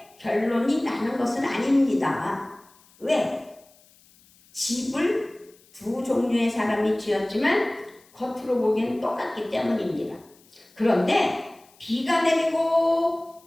결론이 나는 것은 아닙니다. 왜? 집을 두 종류의 사람이 지었지만 겉으로 보기엔 똑같기 때문입니다. 그런데 비가 내리고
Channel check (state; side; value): noise; left; hiss, 29 dB below the sound